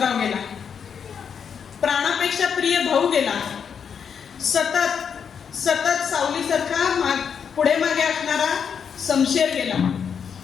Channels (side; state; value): right; quieter; 7.1 dB